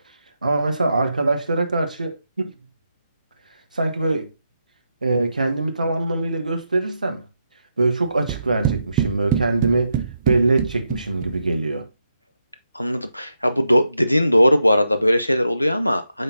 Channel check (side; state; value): both; inverted; correlation -0.84